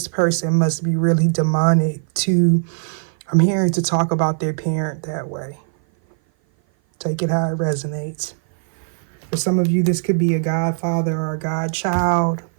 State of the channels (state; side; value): silent; left; 57 dB below the other